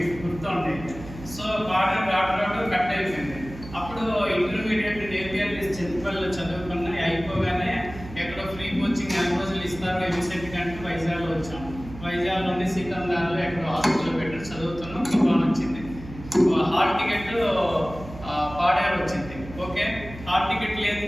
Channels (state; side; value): noise; right; hum, 14 dB below the sound